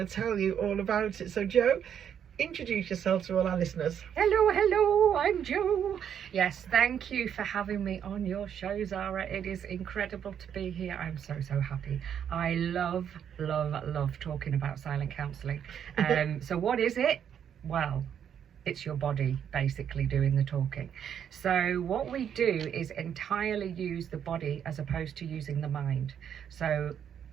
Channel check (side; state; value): left; quieter; 8.7 dB